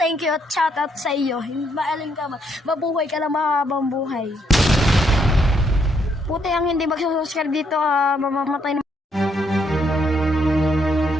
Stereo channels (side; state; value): both; normal; correlation 0.73